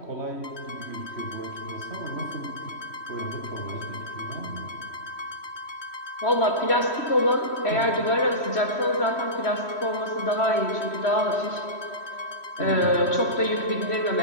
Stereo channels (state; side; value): late; right; 3.1 ms